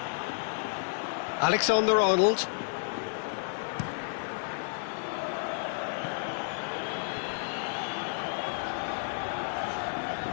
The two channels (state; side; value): silent; right; digital silence